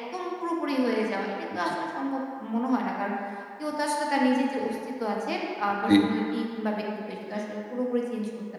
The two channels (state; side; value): identical; both; correlation 1.00